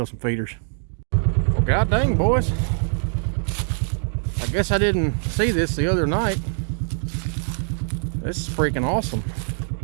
some feeders. Well, god dang, boys. I guess I didn't see this the other night. This is freaking awesome.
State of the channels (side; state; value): left; silent; 63 dB below the other